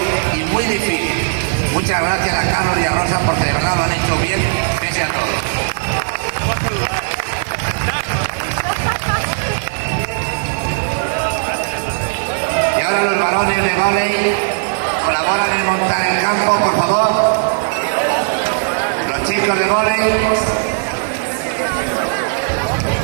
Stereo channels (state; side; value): silent; left; digital silence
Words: y muy difícil. Muchas gracias a Carlos y a Rosa porque de verdad lo han hecho bien pese a todo. Y ahora los varones de vóley colaboran en montar el campo, por favor. Los chicos de vóley.